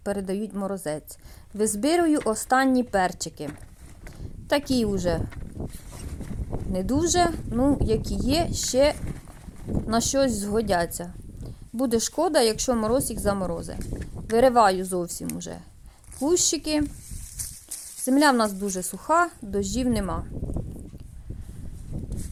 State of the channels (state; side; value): identical; both; correlation 1.00